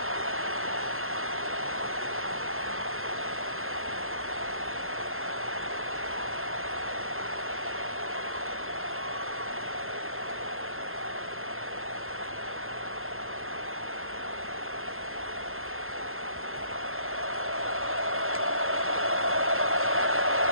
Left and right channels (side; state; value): left; late; 0.61 ms